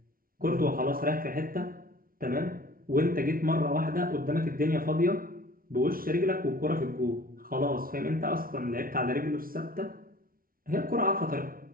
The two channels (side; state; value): left; late; 0.42 ms